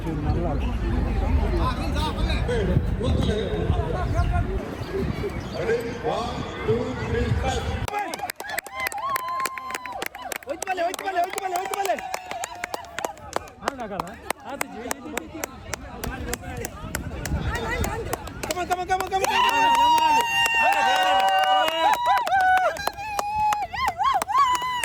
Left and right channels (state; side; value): identical; both; correlation 1.00